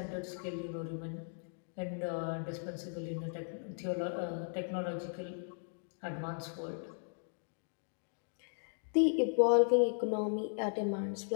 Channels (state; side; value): silent; right; digital silence